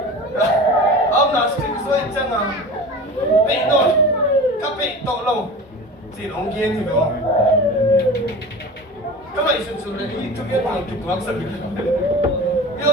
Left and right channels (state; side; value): normal; both; correlation 0.34